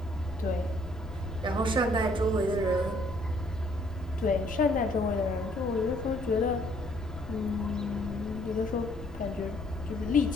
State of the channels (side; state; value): left; noise; rumble, 13 dB below the sound